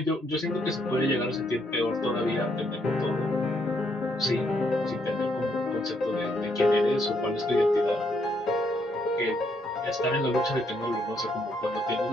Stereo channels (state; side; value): normal; both; correlation 0.73